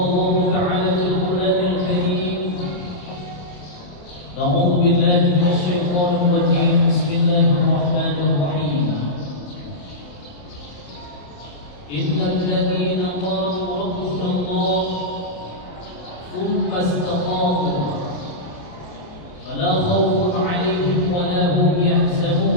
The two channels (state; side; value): late; right; 27 ms